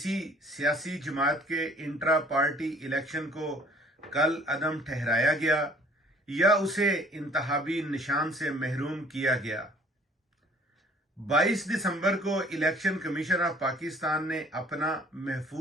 सियासी जमात के इंट्रा पार्टी इलेक्शन को कल अदम ठहराया गया या उसे इंतहाबी निशान से महरूम किया गया? 22 दिसंबर को इलेक्शन कमीशन ऑफ पाकिस्तान ने अपना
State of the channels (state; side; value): normal; both; correlation 0.55